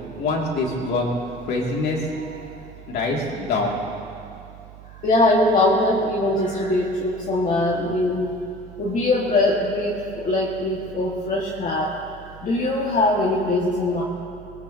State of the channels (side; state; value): right; noise; hum, 18 dB below the sound